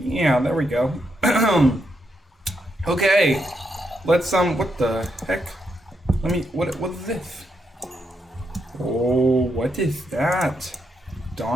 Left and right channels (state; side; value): normal; both; correlation 0.80